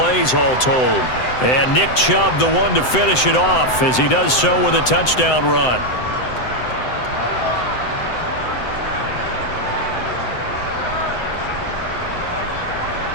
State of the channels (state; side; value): late; right; 7.8 ms